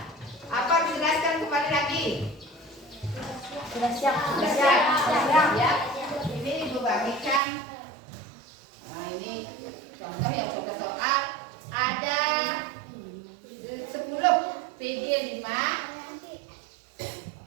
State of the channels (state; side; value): drops out; left; at 7.4 s